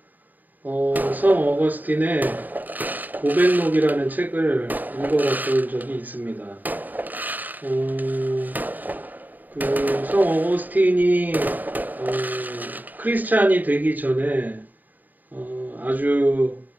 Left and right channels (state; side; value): late; left; 0.086 ms